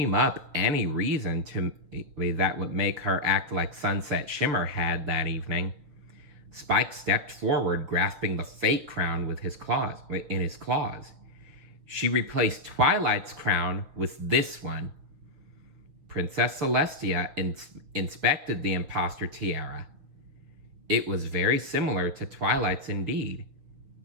up any reason that would make her act like Sunset Shimmer had that evening. Spike stepped forward, grasping the fake crown in his claws. She replaced Twilight's crown with this one. Princess Celestia inspected the imposter tiara. It was very similar to Twilight's indeed.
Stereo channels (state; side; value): late; left; 6.3 ms